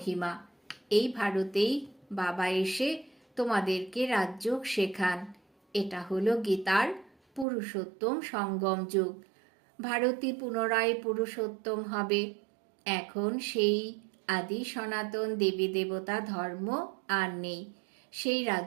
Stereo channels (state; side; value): drops out; left; at 7.5 s